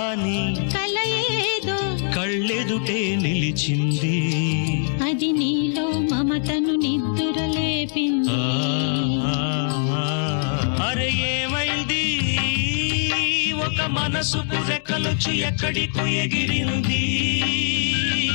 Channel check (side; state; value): right; silent; digital silence